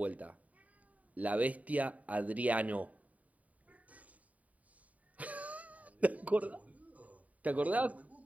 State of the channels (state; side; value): late; left; 0.070 ms